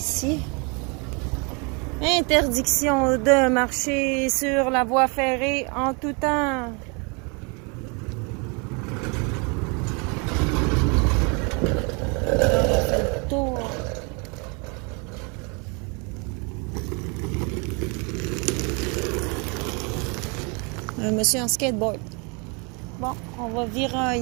Interdiction de marcher sur la voie ferrée en tout temps. On fait le tour. Un monsieur en skateboard. Bon, on va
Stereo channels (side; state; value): left; quieter; 32.4 dB